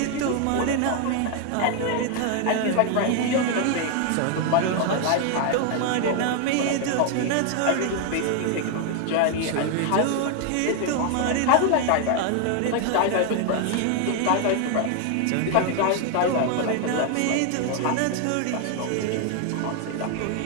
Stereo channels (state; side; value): different; both; correlation 0.01